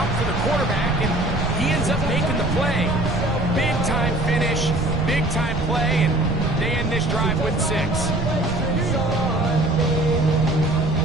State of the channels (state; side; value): noise; right; rumble, 5 dB below the sound